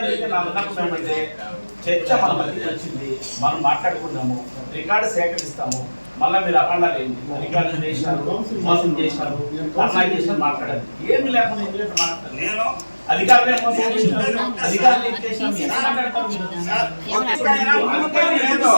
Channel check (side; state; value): both; inverted; correlation -1.00